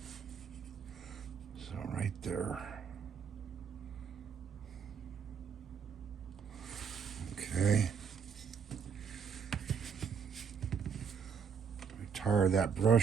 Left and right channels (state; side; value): quieter; left; 6.7 dB